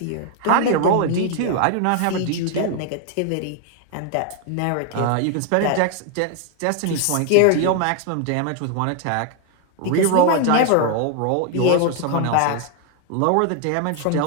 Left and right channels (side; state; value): both; different; correlation 0.00